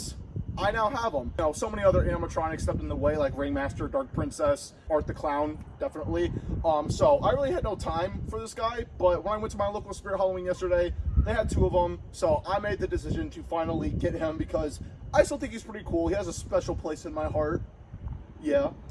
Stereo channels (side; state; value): both; identical; correlation 1.00